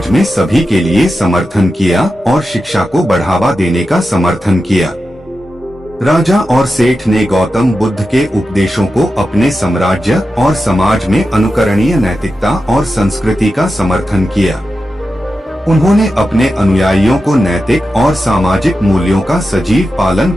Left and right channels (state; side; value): normal; both; correlation 0.91